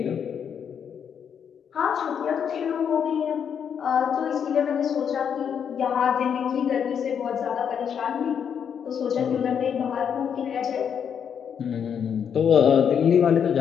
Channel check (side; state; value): right; quieter; 7.8 dB